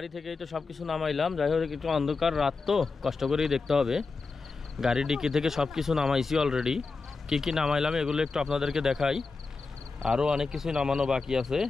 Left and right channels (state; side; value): quieter; right; 4.2 dB